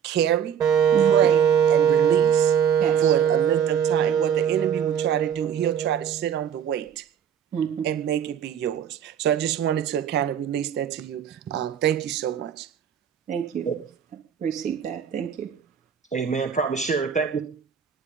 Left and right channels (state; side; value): quieter; left; 8.3 dB